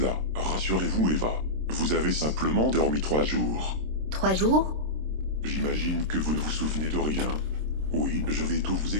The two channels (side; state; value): left; late; 26 ms